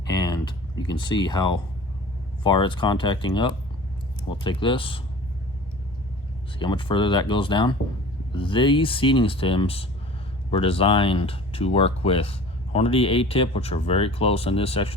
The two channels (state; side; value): normal; both; correlation 0.42